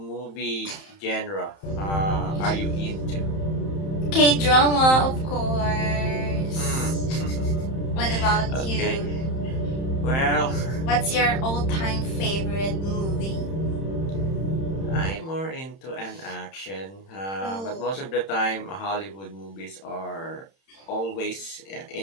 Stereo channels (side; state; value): right; late; 31 ms